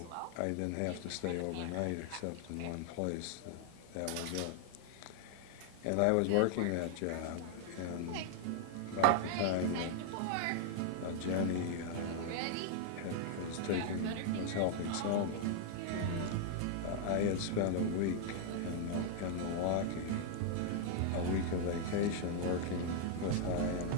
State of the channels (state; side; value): different; both; correlation 0.00